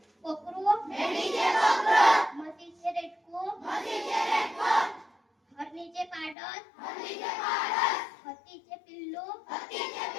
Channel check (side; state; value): right; drops out; at 6.4 s